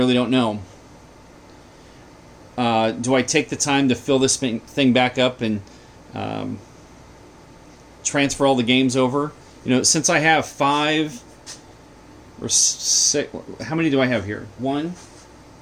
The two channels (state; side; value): identical; both; correlation 1.00